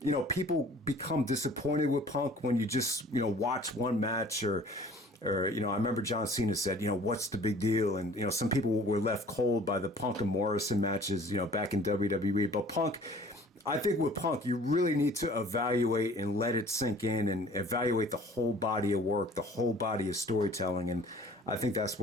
people become disappointed with Punk when you just, watch one match or I remember John Cena said, what's the big deal? And, some people were left cold by the Punk and Morrison matches, back in WWE. But I think with Punk, you really need to evaluate and let it sink in and evaluate the whole body of work, the whole body of storytelling. And I think that's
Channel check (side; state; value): both; normal; correlation 0.50